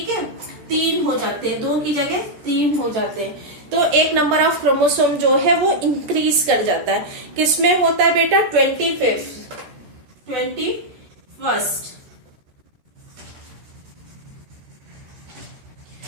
है, 3 हो जाते हैं, 2 की जगह 3 हो जाते हैं, तो एक नंबर ऑफ क्रोमोसोम जो है वो इंक्रीज कर जाता है। किसमें होता है बेटा, 21st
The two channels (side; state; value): left; late; 13 ms